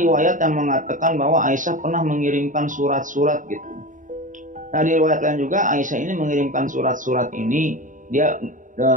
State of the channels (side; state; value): left; late; 0.38 ms